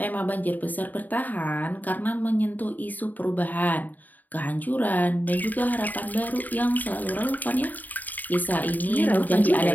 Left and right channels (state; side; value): late; right; 0.084 ms